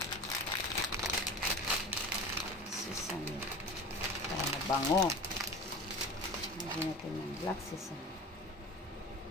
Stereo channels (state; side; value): normal; both; correlation 0.34